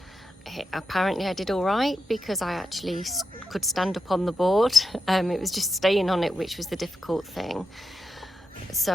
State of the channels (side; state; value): both; normal; correlation 0.86